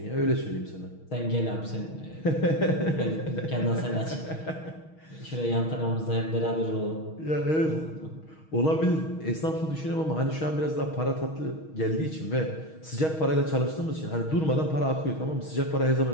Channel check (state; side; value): late; right; 6.3 ms